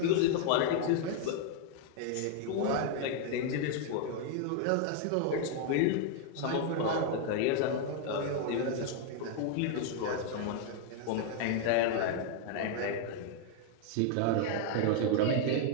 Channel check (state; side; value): different; both; correlation 0.00